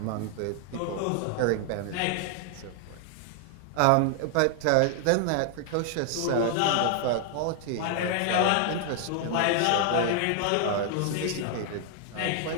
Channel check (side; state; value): both; different; correlation 0.00